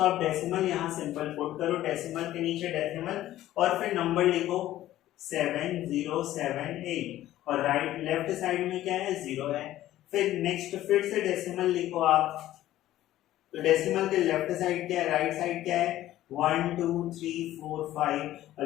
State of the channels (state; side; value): quieter; right; 14.0 dB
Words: डेसिमल यहाँ सिंपल पुट करो, डेसिमल के नीचे डेसिमल और फिर नंबर लिखो 7078 और राइट लेफ्ट साइड में क्या है, 0 है। फिर नेक्स्ट फिर से डेसिमल लिखो आप, तो डेसिमल के लेफ्ट साइड क्या है, राइट साइड क्या है, 1 2 3 4 5